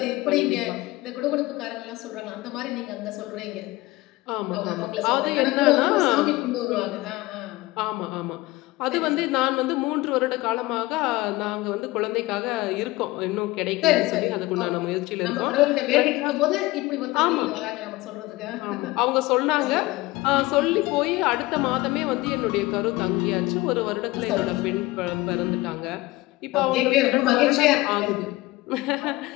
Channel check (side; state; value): right; quieter; 19.9 dB